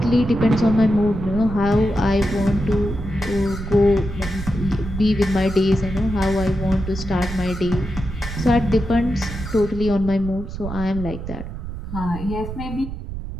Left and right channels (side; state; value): right; noise; rumble, 8 dB below the sound